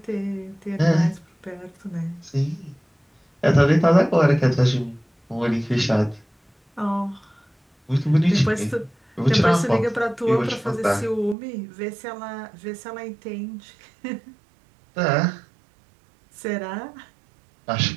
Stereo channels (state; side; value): drops out; left; at 11.4 s